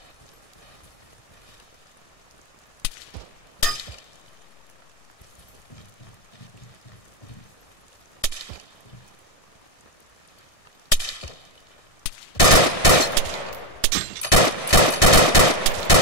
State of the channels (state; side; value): late; right; 1.6 ms